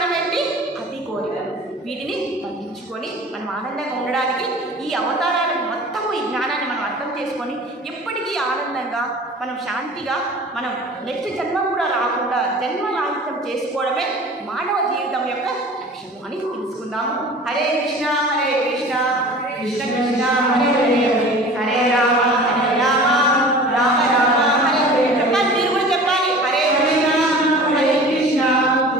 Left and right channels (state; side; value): normal; both; correlation 0.41